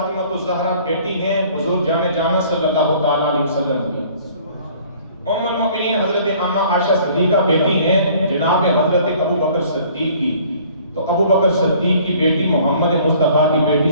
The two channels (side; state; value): both; inverted; correlation -0.54